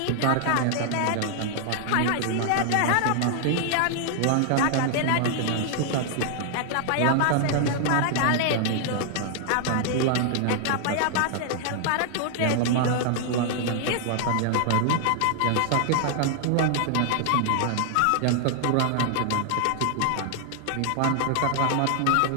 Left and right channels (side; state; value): both; different; correlation 0.00